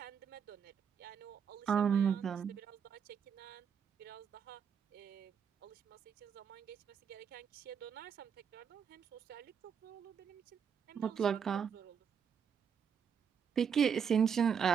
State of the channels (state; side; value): quieter; left; 7.2 dB